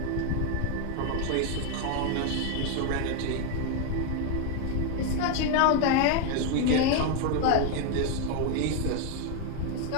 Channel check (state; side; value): different; both; correlation 0.01